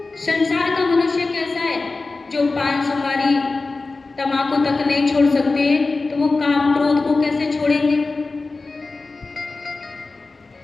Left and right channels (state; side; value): quieter; right; 3.7 dB